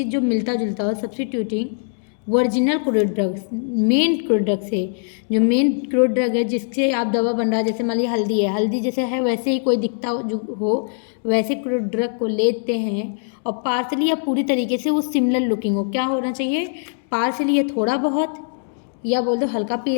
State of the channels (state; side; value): silent; right; digital silence